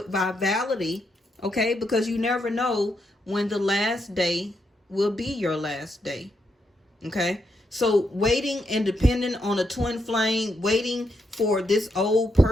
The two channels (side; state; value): both; normal; correlation 0.80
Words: vitality, okay? Because you never know when the last day will be your last day, okay? So waiting and depending on a twin flame, waiting for this old